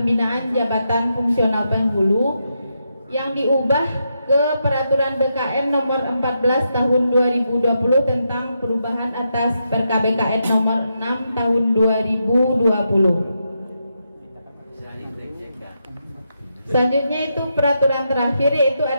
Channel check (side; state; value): both; inverted; correlation -0.83